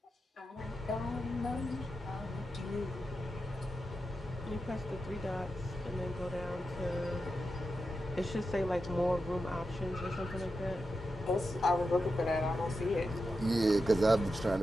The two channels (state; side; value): normal; both; correlation 0.89